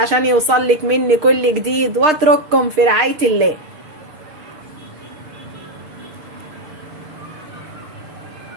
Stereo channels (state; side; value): late; left; 6.5 ms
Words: يوصلك مني كل جديد، واترككم في رعايه الله.